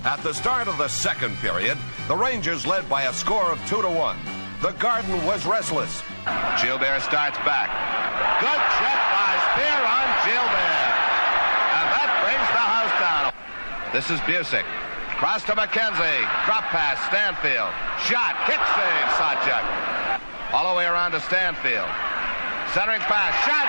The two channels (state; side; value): inverted; both; correlation -1.00